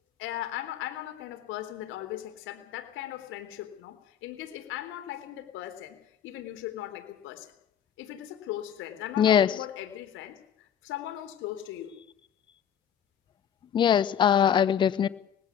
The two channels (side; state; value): right; quieter; 9.0 dB